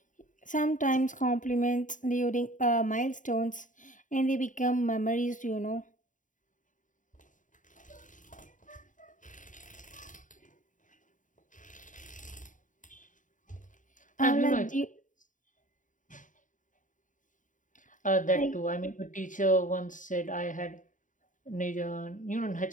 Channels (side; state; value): right; late; 0.37 ms